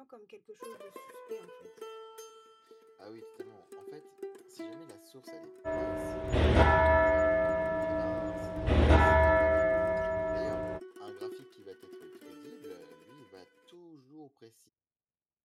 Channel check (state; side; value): identical; both; correlation 1.00